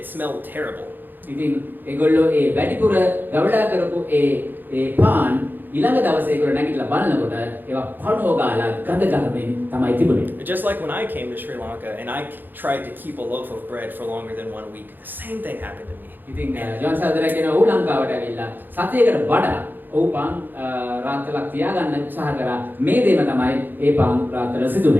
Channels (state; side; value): late; left; 0.090 ms